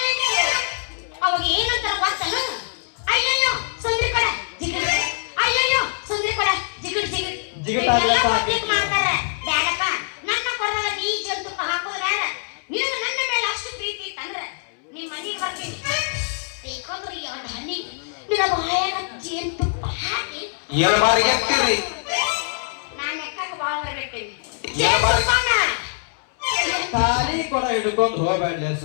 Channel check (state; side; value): silent; right; 63 dB below the other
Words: ಅವಾಗ ಏನಂತಾರ ಗೊತ್ತನ? ಅಯ್ಯಯ್ಯೋ ಸುಂದ್ರಿ ಕಡೆ ಜಿಗಿಡ್, ಅಯ್ಯಯ್ಯೋ ಸುಂದ್ರಿ ಕಡೆ ಜಿಗಿಡ್ ಜಿಗಿಡ್ ಜಿಗಿಡ್ ಮಾಡ್ತಾರೆ. ಬೇಡಪ್ಪ ನನ್ನ ಕೊಡದಾಗ ನೀ ಜೇನು ತುಪ್ಪ ಹಾಕೋದು ಬೇಡ. ನಿನಗೆ ನನ್ನ ಮೇಲೆ ಅಷ್ಟು ಪ್ರೀತಿ ಇತ್ತಂದ್ರೆ ನಿಮ್ಮ ಮನೆಗೆ ಬರ್ತೀನಿ. ಬೇಕಂದ್ರೆ ಎರಡು ಹನಿ ನಿನ್ನ ಬಾಯಾಗ ಜೇನು ತುಪ್ಪ ಹಾಕಿ ಎರಡು ಬಾರಿ ಎತ್ತಿರಿ. ನಾನು ಎಕ್ಕಕ್ಕೆ ಬಾಳ ಬಿಡ್ತೀನಿ. ಖಾಲಿ ಕೊಡ ಹಿಡ್ಕೊಂಡು ಹೋಗ್ಬೇಡ